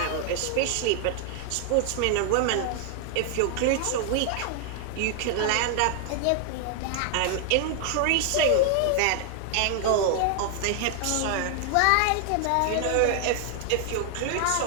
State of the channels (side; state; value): both; different; correlation 0.00